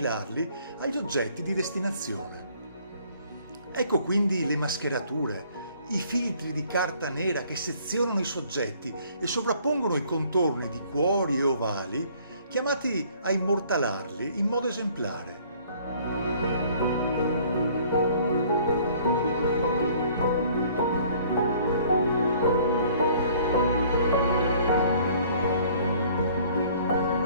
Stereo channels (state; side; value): inverted; both; correlation -0.57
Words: agli oggetti di destinazione. Ecco quindi le mascherature, i filtri di carta nera che sezionano i soggetti e sovrappongono i contorni di cuori e ovali, chiamati a immortalarli in modo esemplare.